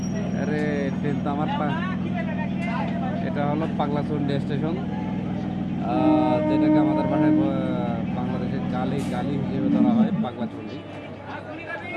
अरे ट्रेन तो আমার এটা হলো পাগলাচন্ডী স্টেশন, যেটাকে আমাদের ভাষায় বাংলাদেশের গালি গালি হিসেবে ধরা হয় পাগলাচন্ডী।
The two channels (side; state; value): both; identical; correlation 1.00